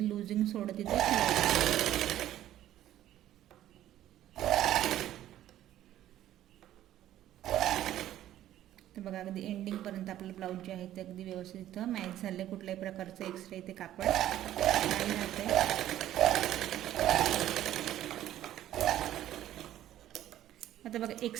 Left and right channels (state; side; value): quieter; left; 12.8 dB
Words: लूजिंग सोडत इथे. तर बघा अगदी एंडिंग पर्यंत आपलं ब्लाऊज जे आहे ते अगदी व्यवस्थित इथं मॅच झाले. कुठल्याही प्रकारचं एक्स्ट्रा इथे कापड नाही राहते. आता बघा